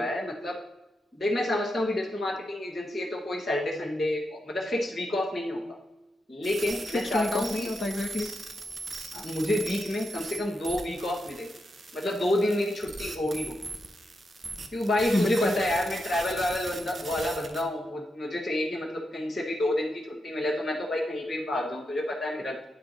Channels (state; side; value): normal; both; correlation 0.85